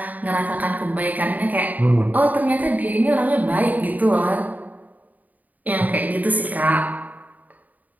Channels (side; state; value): left; late; 0.078 ms